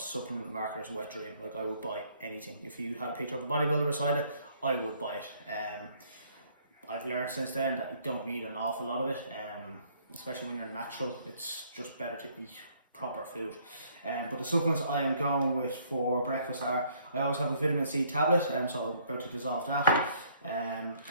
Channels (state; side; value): inverted; both; correlation -0.63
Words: marketer's wet dream. Like, I would buy anything. If you had a picture of a bodybuilder beside it, I would buy it. I've learned since then that you don't need an awful lot of it. Especially when you're natural, it's just better to eat proper food. But the supplements I am going with for breakfast are, I always have a vitamin C tablet, so I'm about to dissolve that.